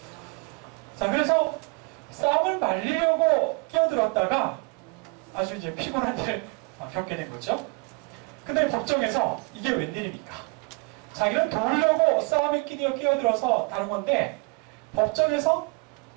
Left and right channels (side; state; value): left; quieter; 30.3 dB